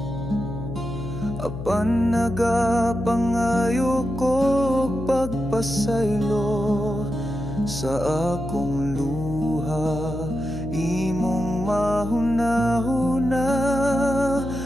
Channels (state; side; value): noise; left; hum, 7 dB below the sound